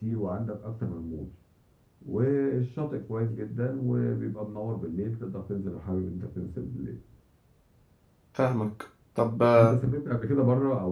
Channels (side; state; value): both; identical; correlation 1.00